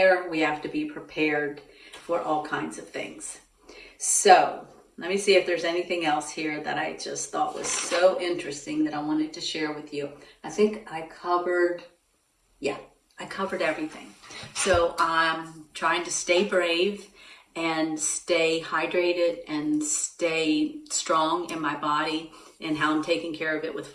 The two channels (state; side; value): identical; both; correlation 1.00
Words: we have to be prepared for all kinds of things. So let me see if there's anything else here that I just thought was so interesting that I wanted to share with you. I think I covered everything. So I'm trying to stay brave and stay hydrated and stay strong in my body and how I'm taking care of it with